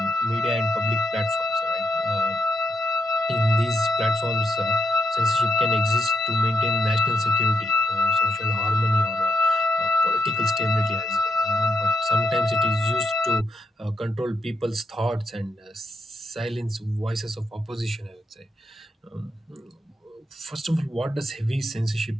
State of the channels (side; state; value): both; normal; correlation 0.81